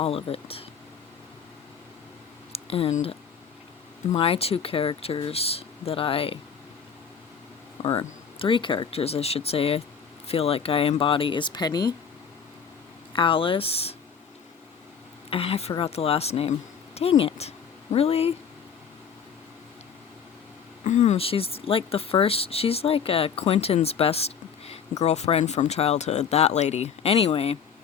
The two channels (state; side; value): quieter; right; 6.9 dB